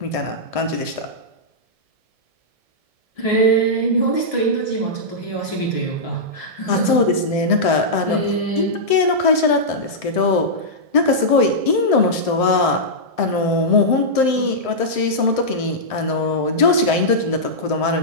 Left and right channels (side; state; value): left; late; 1.7 ms